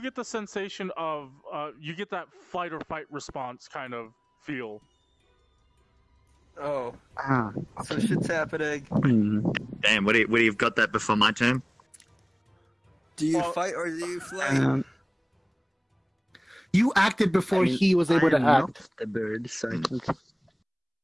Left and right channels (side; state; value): both; identical; correlation 1.00